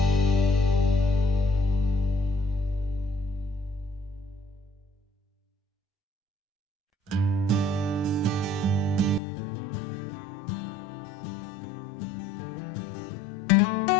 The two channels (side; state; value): right; drops out; at 9.2 s